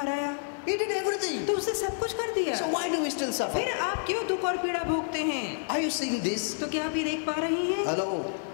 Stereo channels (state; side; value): silent; right; digital silence